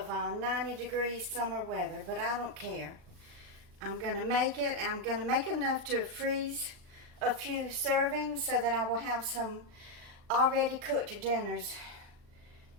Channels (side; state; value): left; late; 39 ms